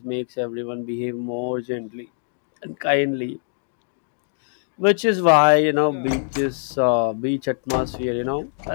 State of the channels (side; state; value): right; silent; digital silence